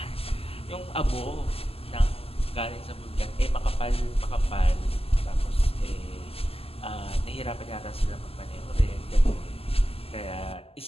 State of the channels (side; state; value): right; late; 0.28 ms